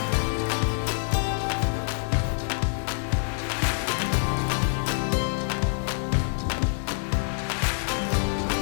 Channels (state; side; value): silent; right; digital silence